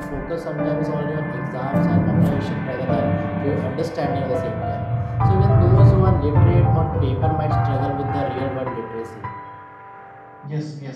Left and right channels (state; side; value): identical; both; correlation 1.00